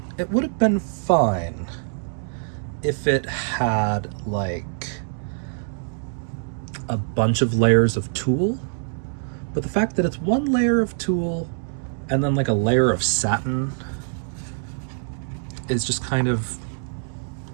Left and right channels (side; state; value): left; silent; digital silence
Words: it would have been fine if it had like a bunch of layers of tulle, but the fact that it's one layer of tulle and then like a layer of satin is just kind of